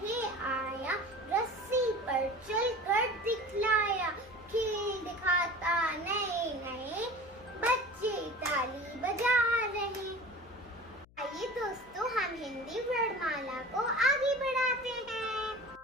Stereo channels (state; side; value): noise; left; hum, 26 dB below the sound